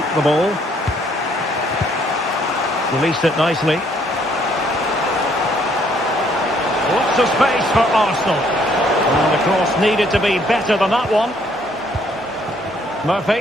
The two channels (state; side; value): normal; both; correlation 0.66